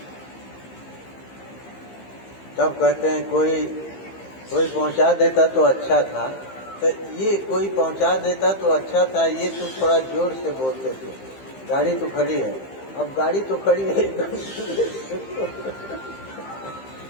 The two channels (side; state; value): right; late; 15 ms